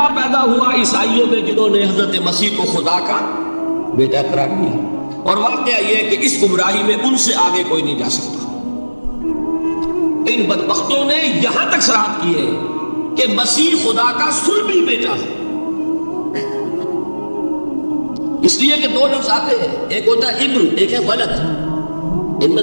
پیدا ہوا عیسائیوں میں جنہوں نے حضرت مسیح کو خدا کا بیٹا قرار دیا۔ اور واقعہ یہ ہے کہ اس گمراہی میں ان سے آگے کوئی نہیں جا سکتا۔ ان بدبختوں نے یہاں تک صراحت کی ہے کہ مسیح خدا کا صلبی بیٹا ہے، اس لیے کہ 2 لفظ آتے ہیں، ایک ہوتا ہے ابن، ایک ہے ولد، ان میں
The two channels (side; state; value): both; inverted; correlation -1.00